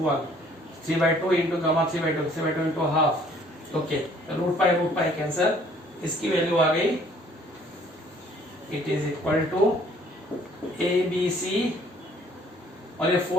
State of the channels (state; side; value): normal; both; correlation 0.59